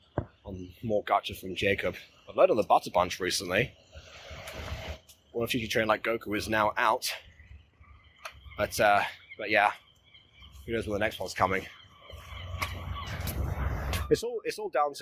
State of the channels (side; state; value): both; identical; correlation 1.00